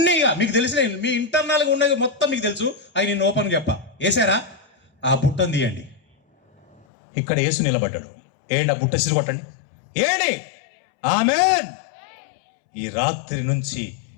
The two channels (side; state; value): right; drops out; at 6.9 s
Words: మీకు తెలిసిన మీ ఇంటర్నల్గా ఉన్నది మొత్తం మీకు తెలుసు. అవి నేను ఓపెన్ చెప్పా. వేసారా? ఆ బుట్టను తీయండి. ఇక్కడ యేసు నిలబడ్డాడు. ఏంటి? ఆ బుట్ట సిరి కొట్టండి. ఏంటి? ఆమేన్. ఈ రాత్రి నుంచి